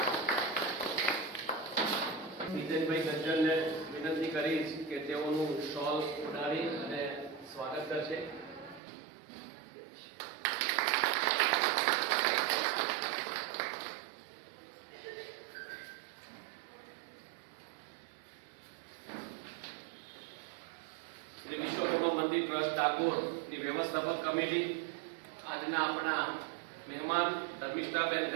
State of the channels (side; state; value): left; drops out; at 8.8 s